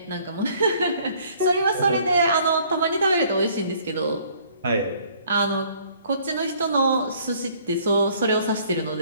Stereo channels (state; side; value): inverted; both; correlation -0.59